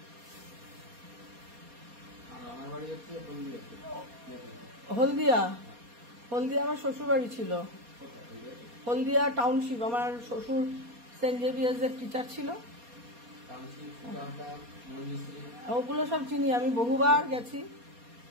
হলদিয়া। হলদিয়া আমার শ্বশুর বাড়ি ছিল, হলদিয়া টাউনশিপ। আমার শ্বশুর সেন্ট জেভিয়ার্স এর টিচার ছিল। ওগুলো সব চিনি আমি, বহুবার গেছি,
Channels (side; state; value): left; late; 4.2 ms